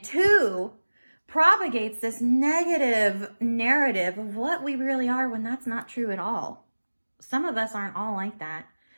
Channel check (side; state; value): both; inverted; correlation -1.00